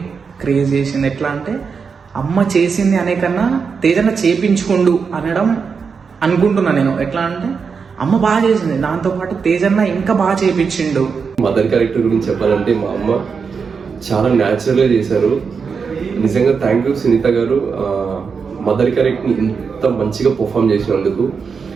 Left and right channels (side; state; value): left; quieter; 5.6 dB